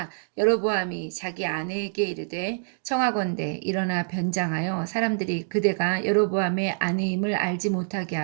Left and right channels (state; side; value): silent; left; digital silence